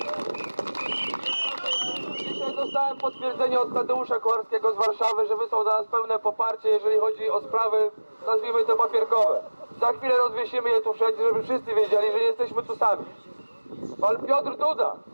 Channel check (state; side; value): inverted; both; correlation -1.00